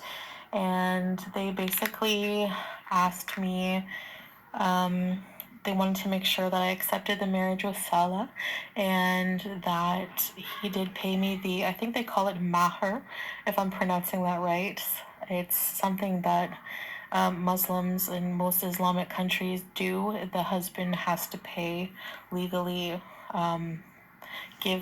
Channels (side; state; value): both; identical; correlation 1.00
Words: and they basically asked me, they wanted to make sure that I accepted the marriage with Saleh, and that he did pay me the, I think they call it mahr, if I'm pronouncing that right. It's something that Muslims in most Islamic countries do. The husband has to pay legally, give